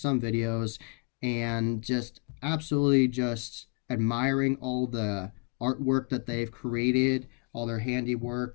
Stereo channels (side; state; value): right; quieter; 36.7 dB